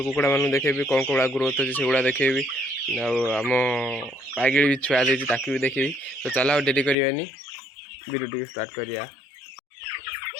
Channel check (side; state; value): right; drops out; at 7.0 s